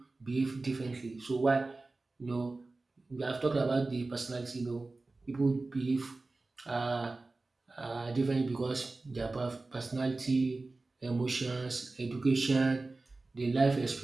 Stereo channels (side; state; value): left; quieter; 3.4 dB